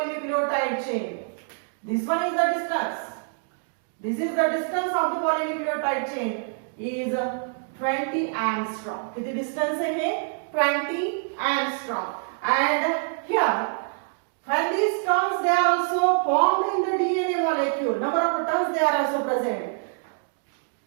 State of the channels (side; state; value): left; silent; 61 dB below the other